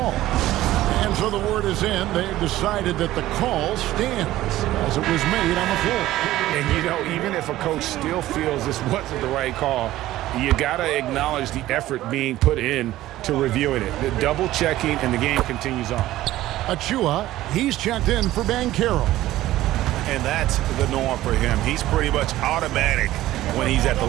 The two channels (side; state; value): left; quieter; 15.3 dB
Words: And so the word is in. They've decided that the call stands as it was made on the floor. And, even if a coach still feels this wasn't the right call, you got to acknowledge the effort being put in to reviewing it. The double checking, and the game continues on. Achua, he's checked in for Banchero. And that's the norm for him. He's pretty much automatic when he's at the